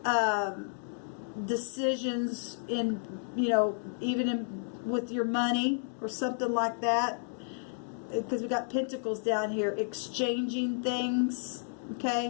decisions in, you know, even with your money or something like that. Because we got Pentacles down here, exchanging things,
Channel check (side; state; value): right; silent; digital silence